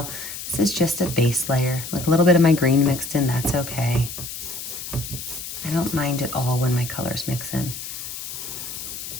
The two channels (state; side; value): noise; left; hiss, 8 dB below the sound